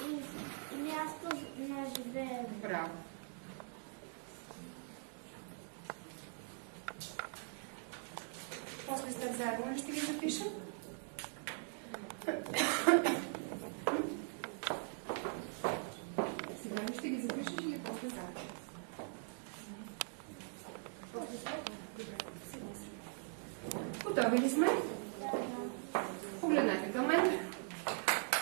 И място на живеене. Браво. После сте заедно ли ще ги запишем? Сега ли ще ги запишеш или после заедно? Готови ли сме? Погледнете към мен.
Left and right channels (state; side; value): silent; left; 50 dB below the other